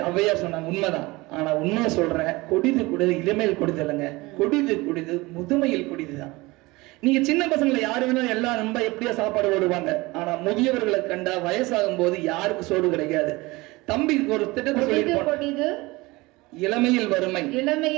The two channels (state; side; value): quieter; left; 22.1 dB